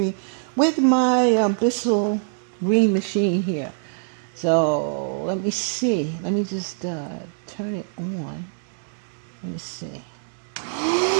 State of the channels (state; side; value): silent; left; 63 dB below the other